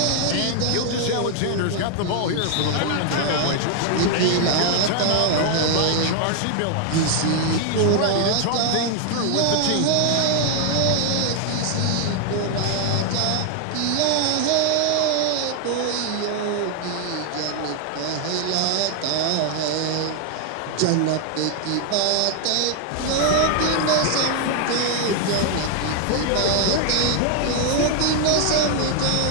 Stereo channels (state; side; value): different; both; correlation 0.00